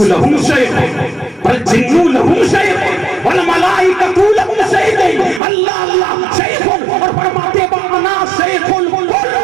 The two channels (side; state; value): left; drops out; at 5.4 s